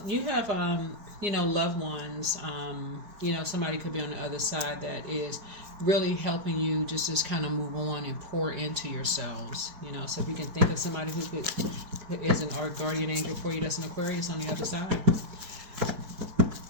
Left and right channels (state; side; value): late; left; 4.6 ms